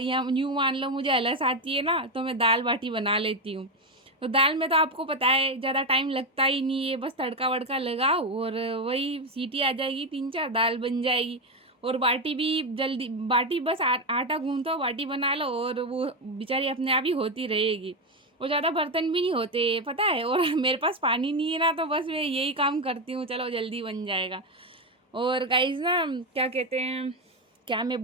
यूँ मान लो मुझे आलस आती है ना, तो मैं दाल बाटी बना लेती हूँ। तो दाल में तो आपको पता है ज़्यादा टाइम लगता ही नहीं है, बस तड़का वड़का लगाओ और वही सीटी आ जाएगी, 3 4 दाल बन जाएगी। और बाटी भी जल्दी, बाटी बस आटा गूंथो बाटी बना लो और वो बेचारी अपने आप ही होती रहेगी। और ज़्यादा बर्तन भी नहीं होते पता है। और मेरे पास पानी नहीं है ना, तो बस मैं यही काम करती हूँ, चलो जल्दी बन जाएगा। और गाइज ना क्या कहते हैं, क्या मैं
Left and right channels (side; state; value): both; normal; correlation 0.10